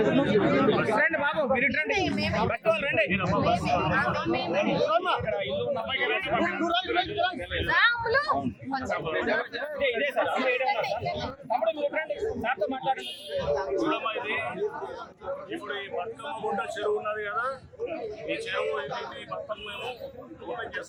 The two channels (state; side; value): identical; both; correlation 1.00